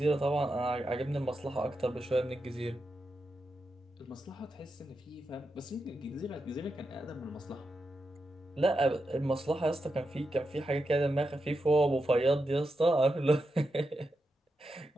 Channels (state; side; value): normal; both; correlation 0.87